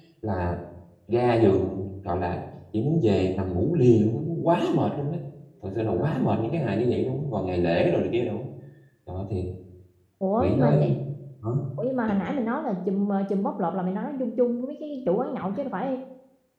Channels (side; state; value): both; identical; correlation 1.00